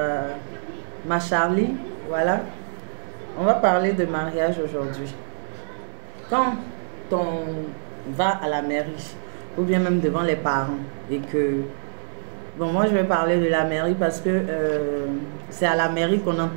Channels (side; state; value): left; silent; 60 dB below the other